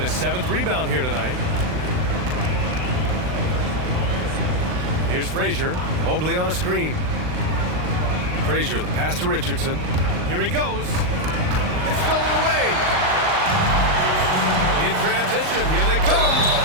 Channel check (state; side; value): late; left; 39 ms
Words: 7th rebound here tonight. Here's Frazier. Mobley on a screen. Frazier, the pass to Richardson. Here he goes. It's stolen away. In transition, here they come.